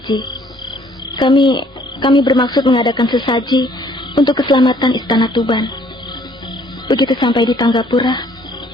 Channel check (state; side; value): normal; both; correlation 0.61